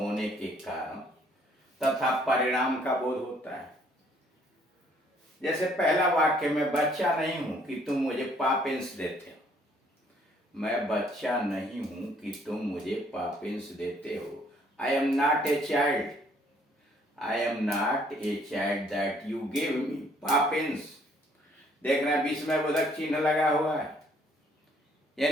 के कारण तथा परिणाम का बोध होता है। जैसे पहला वाक्य, मैं बच्चा नहीं हूं कि तुम मुझे पापिंस देते हो। मैं बच्चा नहीं हूं कि तुम मुझे पापिंस देते हो। I am not a child. I am not a child that you give me Poppins. देखना बीच में बोधक चिन्ह लगा हुआ है,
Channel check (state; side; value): normal; both; correlation 0.63